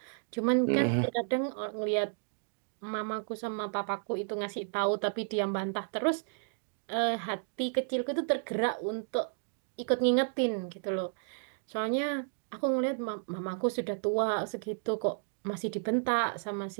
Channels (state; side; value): silent; left; digital silence